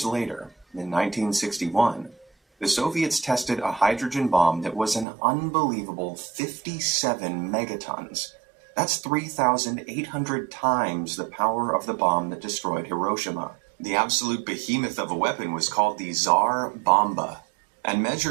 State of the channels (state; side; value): drops out; left; at 5.1 s